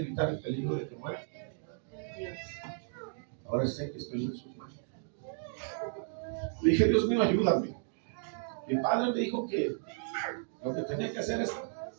el peligro de que muera. Ahora sé que estoy en sus manos. Le dije, Dios mío, ayúdame. Mi padre me dijo que lo que tenía que hacer es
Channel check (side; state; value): left; silent; digital silence